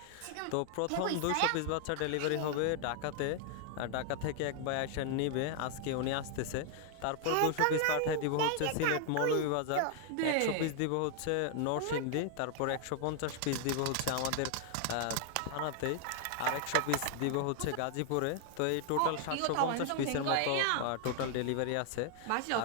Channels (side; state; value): both; different; correlation 0.00